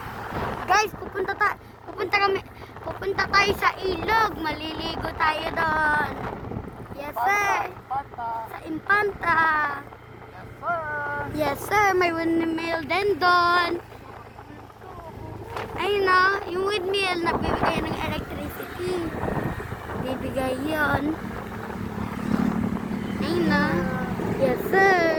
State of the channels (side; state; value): both; identical; correlation 1.00